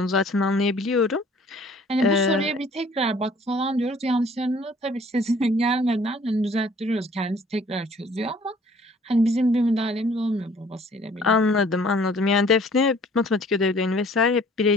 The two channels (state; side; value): normal; both; correlation 0.55